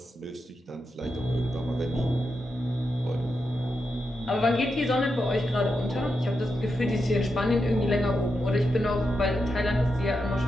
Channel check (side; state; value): both; normal; correlation 0.86